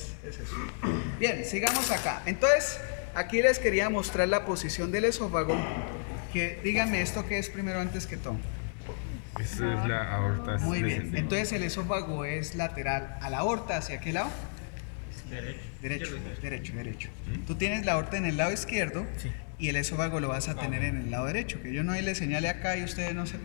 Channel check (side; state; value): right; silent; digital silence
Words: es eso. Bien, sigamos acá. Entonces, aquí les quería mostrar la posición del esófago. Que díganme esto que es primero antes que todo. Esta es la aorta Muy bien. descendente. Entonces el esófago es lateral a la aorta. ¿Hacia qué lado? Derecho. Derecho. Tú tienes la aorta en el lado izquierdo Sí. y el esófago lo vas a tener en el lado derecho, que yo no le señale acá y ustedes no